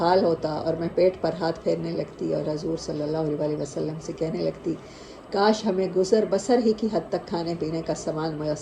ہوتا اور میں پیٹ پر ہاتھ پھیرنے لگتی اور حضور صلی اللہ علیہ وسلم سے کہنے لگتی، کاش ہمیں گزر بسر ہی کی حد تک کھانے پینے کا سامان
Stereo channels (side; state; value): both; identical; correlation 1.00